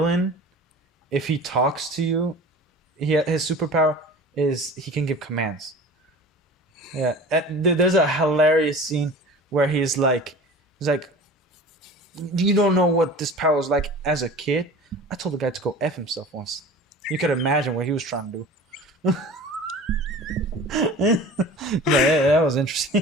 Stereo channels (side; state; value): both; normal; correlation 0.39